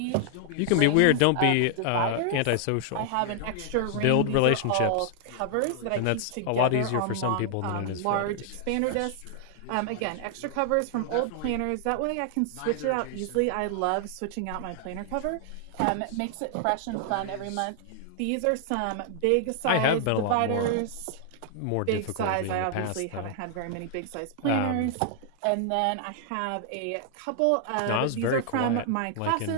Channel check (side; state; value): both; different; correlation 0.00